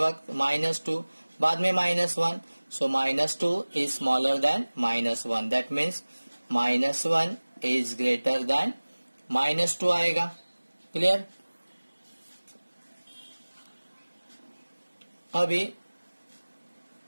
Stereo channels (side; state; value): both; inverted; correlation -1.00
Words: -2, बाद में -1. सो -2 is smaller then -1. That means -1 is greater then -2 आएगा. क्लियर? अभी